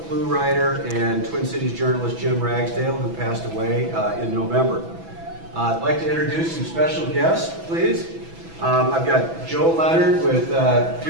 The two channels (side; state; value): left; late; 6.0 ms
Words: clue writer and Twin Cities journalist Jim Ragsdale, who passed away in November. I'd like to introduce some special guests, please. I've got Joe Leonard with